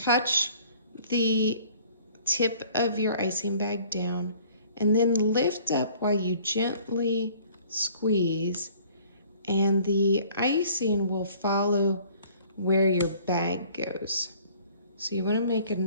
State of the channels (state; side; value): inverted; both; correlation -0.55